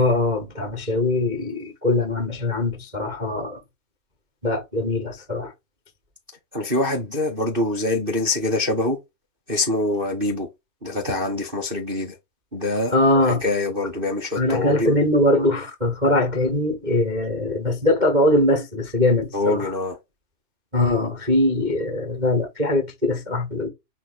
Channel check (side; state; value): left; late; 2.6 ms